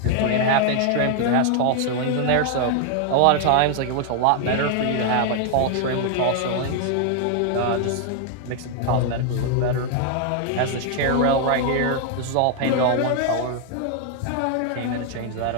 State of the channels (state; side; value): different; both; correlation 0.00